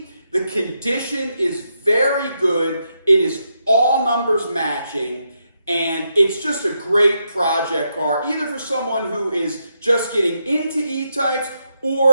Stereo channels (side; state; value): both; inverted; correlation -0.82